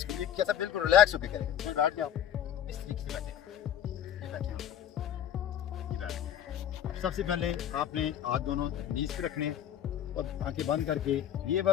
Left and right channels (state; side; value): quieter; right; 10.0 dB